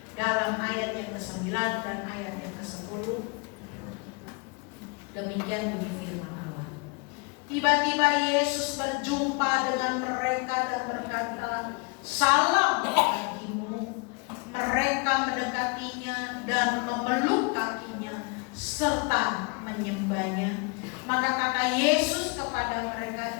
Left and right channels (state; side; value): quieter; right; 30.8 dB